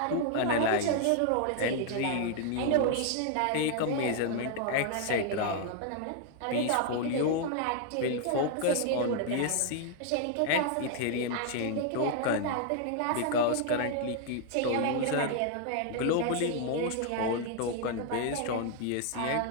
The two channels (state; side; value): different; both; correlation 0.00